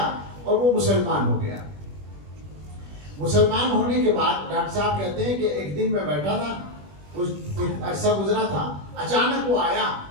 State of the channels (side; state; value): left; late; 21 ms